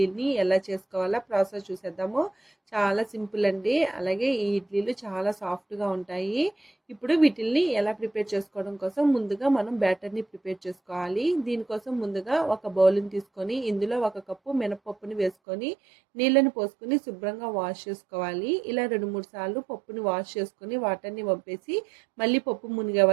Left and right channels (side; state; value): left; drops out; at 15.4 s